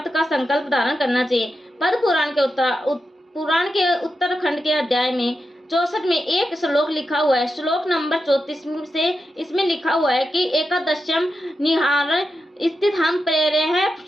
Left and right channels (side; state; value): both; normal; correlation 0.88